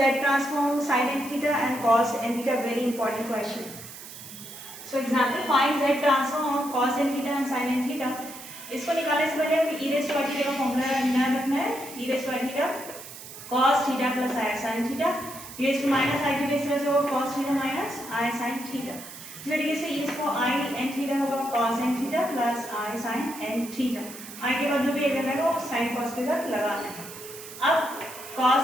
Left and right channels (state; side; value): noise; right; hiss, 14 dB below the sound